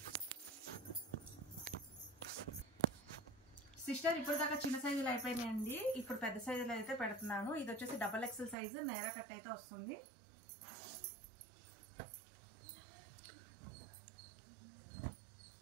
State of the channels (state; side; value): drops out; left; at 8.6 s